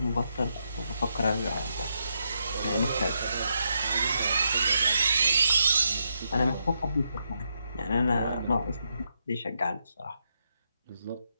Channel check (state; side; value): inverted; both; correlation -0.81